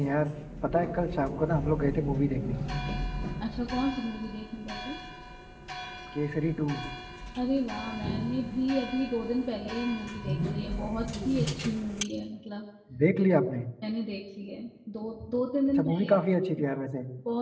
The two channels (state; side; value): identical; both; correlation 1.00